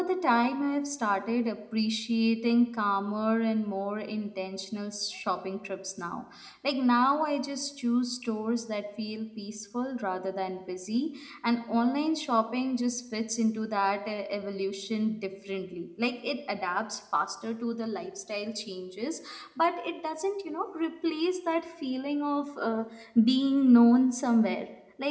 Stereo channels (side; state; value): both; identical; correlation 1.00